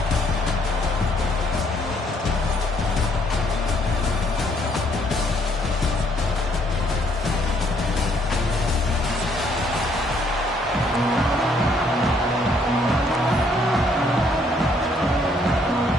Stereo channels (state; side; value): normal; both; correlation 0.67